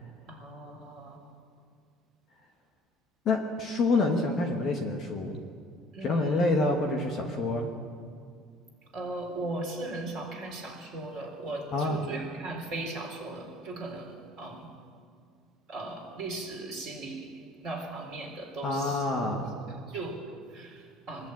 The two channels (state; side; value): normal; both; correlation 0.53